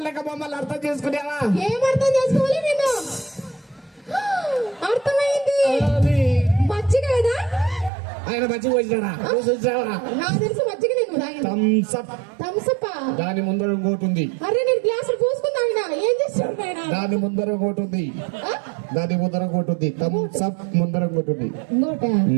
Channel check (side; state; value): left; drops out; at 7.9 s